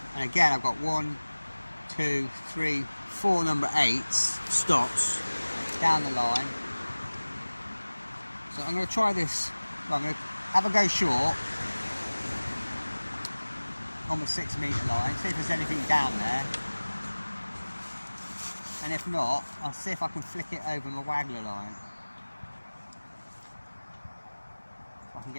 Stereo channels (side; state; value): both; inverted; correlation -1.00